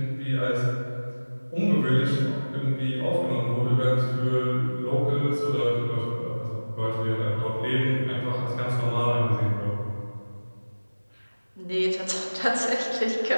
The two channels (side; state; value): both; inverted; correlation -1.00